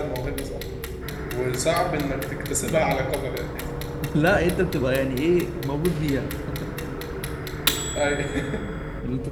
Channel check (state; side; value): identical; both; correlation 1.00